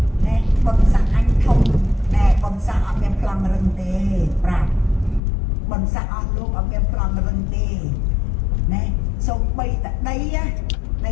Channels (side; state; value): right; drops out; at 5.2 s